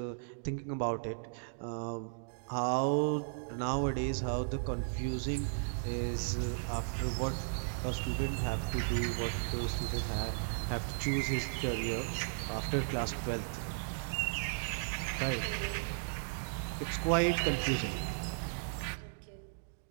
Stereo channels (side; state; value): left; silent; digital silence